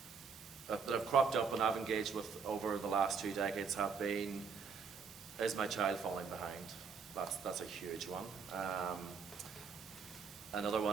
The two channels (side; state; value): left; quieter; 5.7 dB